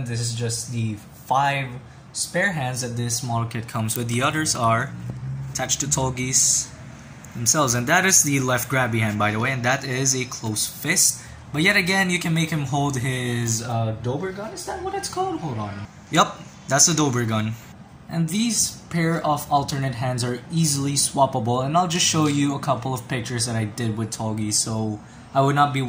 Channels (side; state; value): both; identical; correlation 1.00